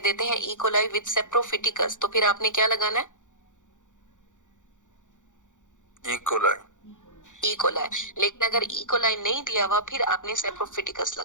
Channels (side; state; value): right; late; 0.86 ms